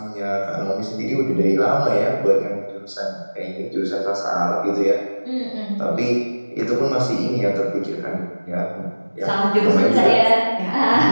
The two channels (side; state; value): both; inverted; correlation -1.00